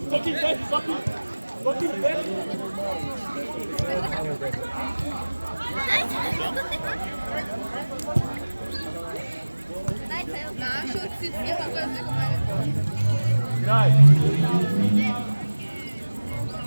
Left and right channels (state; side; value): inverted; both; correlation -1.00